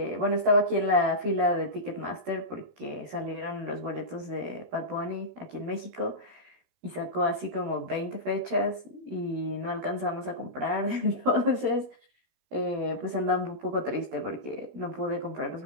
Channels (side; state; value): left; late; 15 ms